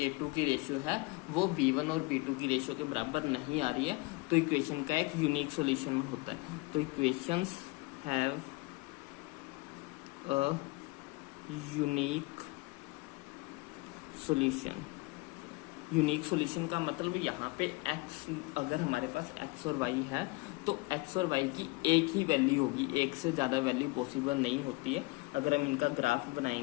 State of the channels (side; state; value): right; quieter; 25.0 dB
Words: की रेशियो है वो b1 और b2 की रेशियो के बराबर नहीं आ रही है, तो इक्वेशन का एक यूनिक सॉल्यूशन होता है। तो equations have a unique solution. Unique solution का मतलब यहाँ पे x, अगर हमारे पास x और y है तो x और y की एक ही वैल्यू होगी, एक से ज़्यादा वैल्यू पॉसिबल नहीं होती है। अगर हम इनका ग्राफ